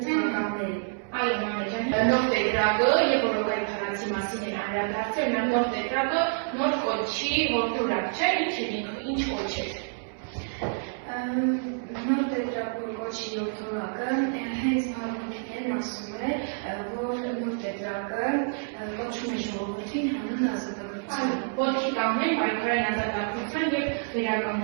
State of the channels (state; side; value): silent; left; digital silence